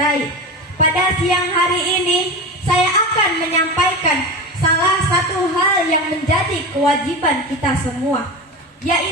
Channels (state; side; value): normal; both; correlation 0.25